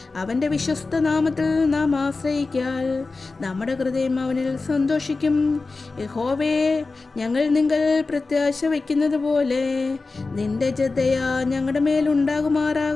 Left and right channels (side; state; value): right; quieter; 3.8 dB